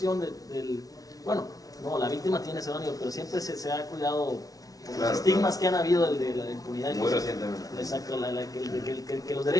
la víctima tiene ese nivel, pero siempre se ha cuidado por los estigmas que han habido de la impunidad. Muy recientemente. Exacto, que los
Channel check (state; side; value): late; right; 0.18 ms